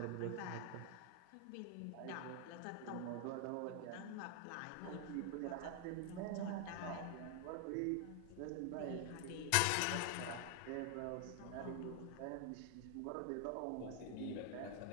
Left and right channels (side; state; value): both; different; correlation 0.00